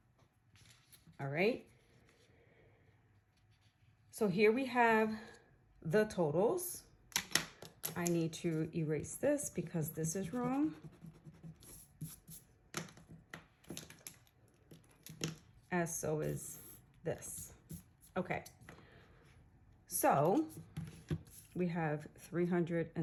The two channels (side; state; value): both; identical; correlation 1.00